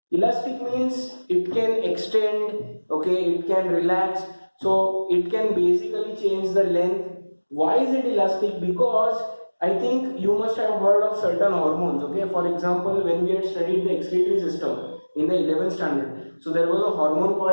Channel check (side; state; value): both; inverted; correlation -1.00